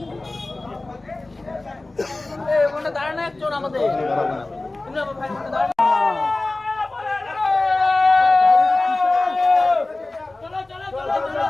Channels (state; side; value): quieter; right; 3.0 dB